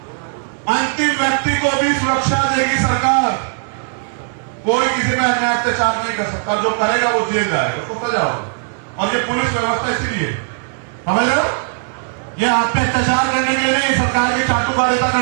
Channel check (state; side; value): silent; left; digital silence